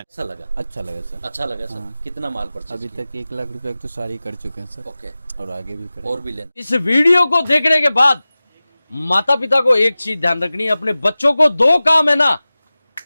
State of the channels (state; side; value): inverted; both; correlation -0.97